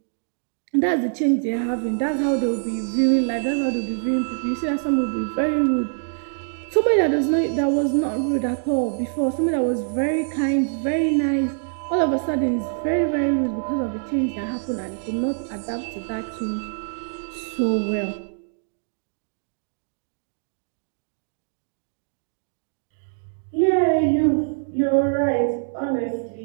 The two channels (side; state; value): left; silent; digital silence